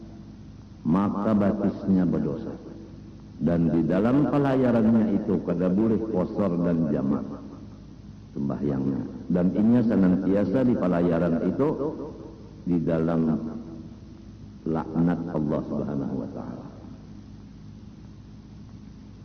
maka batisnya berdosa. Dan di dalam pelayarannya itu kada boleh kosor dan jamak sembahyangnya. Dan ini senantiasa di pelayaran itu di dalam laknat Allah Subhanahu wa taala.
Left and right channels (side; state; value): both; identical; correlation 1.00